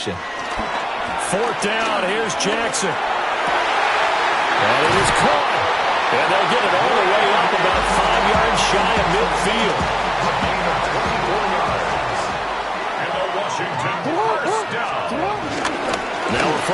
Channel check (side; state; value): both; identical; correlation 1.00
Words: Fourth down, here's Jackson. And it is caught. And they'll get it all the way up about 5 yards shy of midfield. Now a